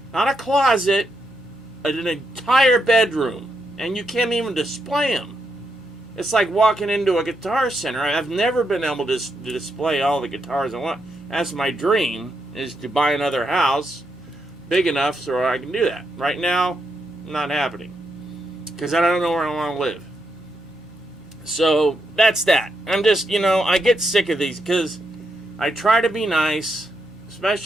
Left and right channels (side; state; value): both; normal; correlation 0.81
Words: Not a closet. An entire bedroom. And you can't even display them. It's like walking into a guitar center. I've never been able to display all the guitars I want. That's my dream, is to buy another house big enough so I can do that. Right now, not happening. Because I don't know where I want to live. So, that's that. I'm just, I get sick of these because I try to be nice,